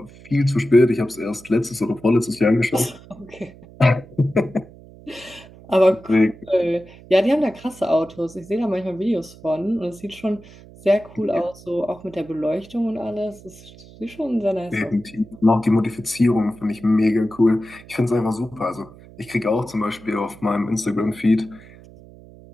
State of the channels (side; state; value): right; noise; hum, 21 dB below the sound